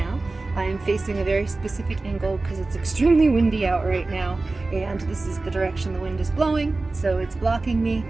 I am facing a very specific angle because it's extremely windy out right now, and this is the direction the wind is blowing, so it's blocking me,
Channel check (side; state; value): left; quieter; 3.3 dB